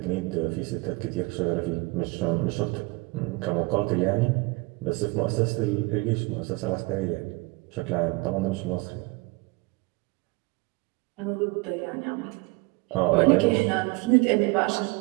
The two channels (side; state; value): left; quieter; 25.5 dB